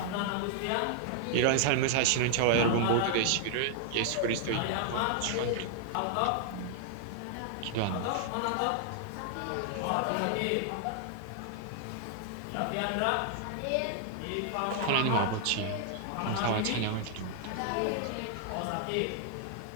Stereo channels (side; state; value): both; different; correlation 0.00